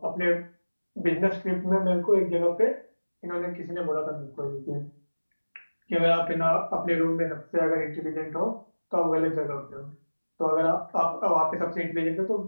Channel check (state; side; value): inverted; both; correlation -1.00